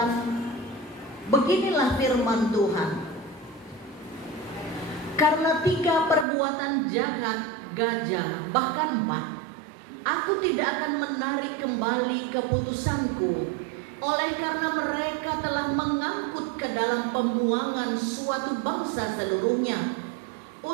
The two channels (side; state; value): left; drops out; at 6.2 s